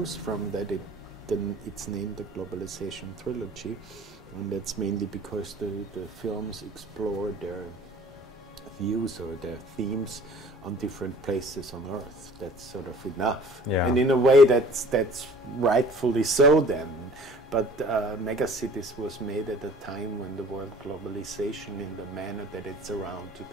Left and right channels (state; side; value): normal; both; correlation 0.49